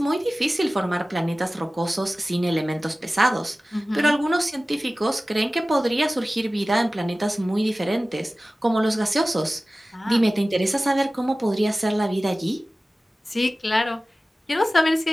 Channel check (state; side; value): normal; both; correlation 0.96